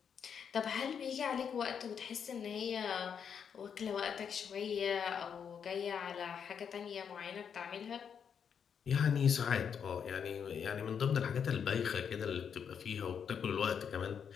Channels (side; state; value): right; quieter; 7.3 dB